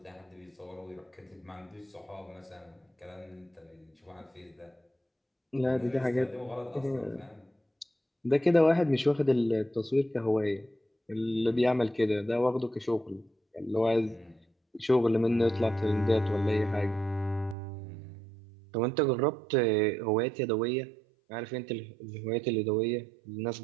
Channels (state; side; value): drops out; left; at 17.6 s